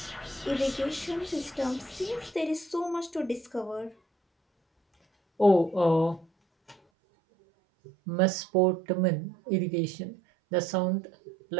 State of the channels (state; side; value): drops out; left; at 6.8 s